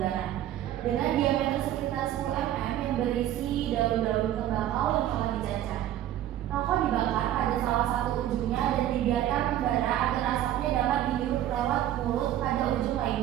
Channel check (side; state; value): left; quieter; 12.3 dB